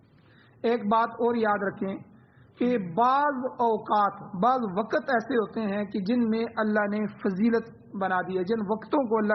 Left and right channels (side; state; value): both; identical; correlation 1.00